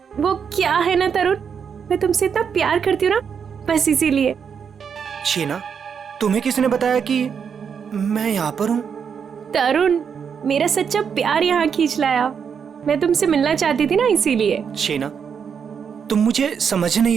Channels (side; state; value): left; quieter; 6.9 dB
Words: वो क्या है ना तरुण, मैं तुमसे इतना प्यार करती हूँ ना, बस इसीलिए। शीना, तुम्हें किसने बताया कि मैं यहाँ पर हूँ? तरुण, मेरा सच्चा प्यार यहाँ खींच लाया। मैं तुमसे मिलना चाहती थी ना, इसीलिए। शीना, तुम मुझे समझ